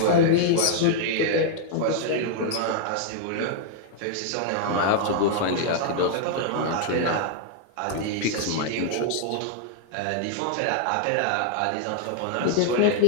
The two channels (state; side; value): different; both; correlation -0.01